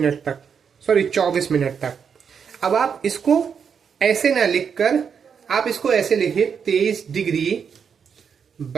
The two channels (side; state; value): left; quieter; 6.8 dB